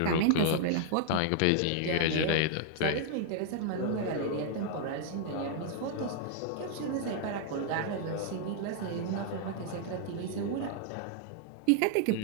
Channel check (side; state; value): both; different; correlation 0.00